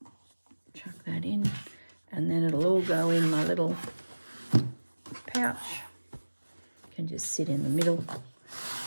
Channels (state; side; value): inverted; both; correlation -1.00